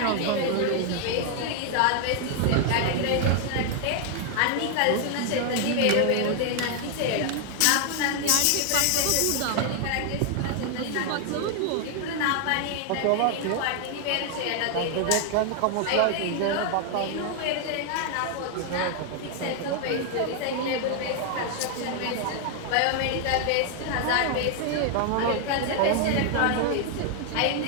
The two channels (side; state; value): both; different; correlation 0.00